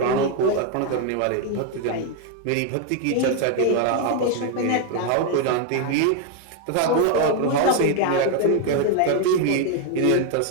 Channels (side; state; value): both; different; correlation 0.01